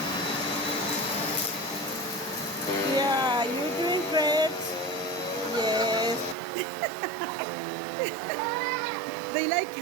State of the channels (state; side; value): drops out; left; at 6.4 s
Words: Yeah, you're doing great. Yes. They like